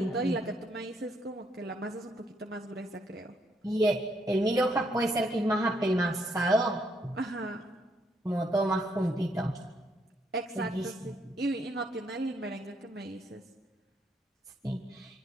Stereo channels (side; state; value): both; normal; correlation 0.74